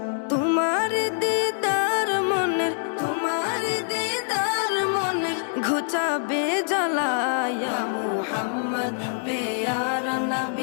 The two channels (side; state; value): right; silent; digital silence